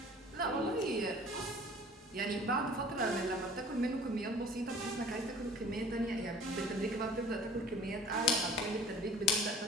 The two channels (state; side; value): normal; both; correlation 0.46